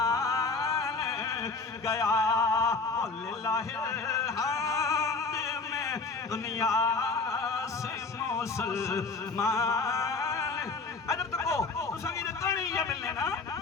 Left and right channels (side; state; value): right; quieter; 4.1 dB